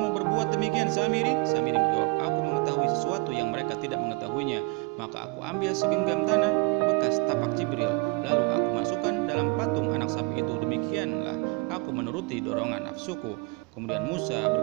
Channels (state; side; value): quieter; left; 28.4 dB